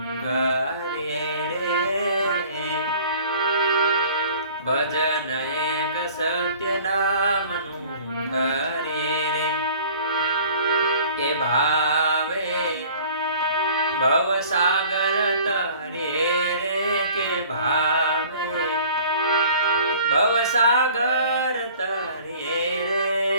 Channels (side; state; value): both; inverted; correlation -0.49